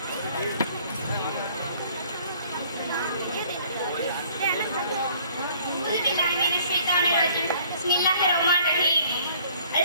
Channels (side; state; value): both; inverted; correlation -0.57